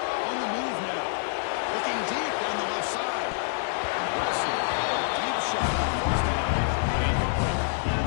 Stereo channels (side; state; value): right; silent; 60 dB below the other